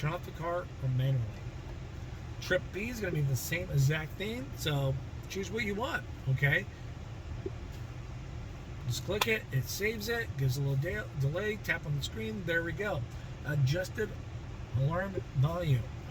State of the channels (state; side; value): identical; both; correlation 1.00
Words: off the car or manually. Trip B is going to be the same exact thing, so choose what you want, okay? Just click it, it saves it, gives a little delay, tap on the screen, there we go. Adjusted alarm volume.